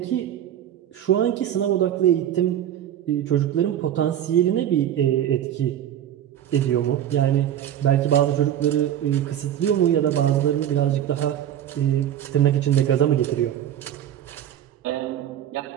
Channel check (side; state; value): left; quieter; 10.8 dB